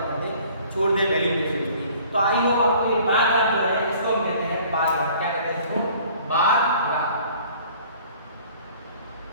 करते हैं छोड़ दे वैल्यूएशन की। तो आई होप आपको ये बार ग्राफ जो है इसको हम कहते हैं बार ग्राफ, क्या कहते हैं इसको बार ग्राफ।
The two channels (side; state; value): both; inverted; correlation -0.53